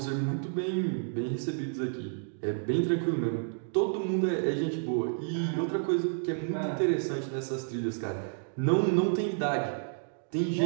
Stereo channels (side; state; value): left; silent; digital silence